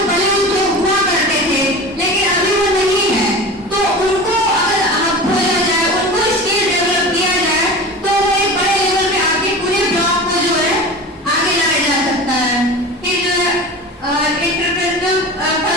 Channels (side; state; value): both; normal; correlation 0.33